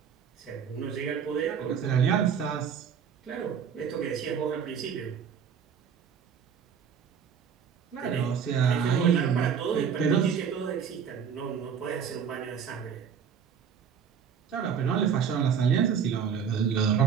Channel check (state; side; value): quieter; left; 7.3 dB